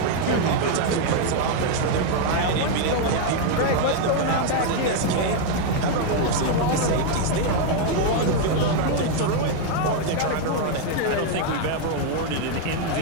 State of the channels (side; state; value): both; different; correlation 0.00